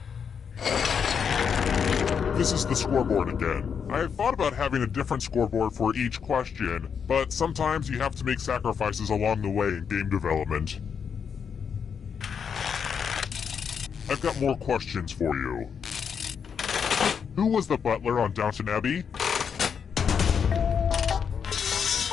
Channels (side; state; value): right; quieter; 6.9 dB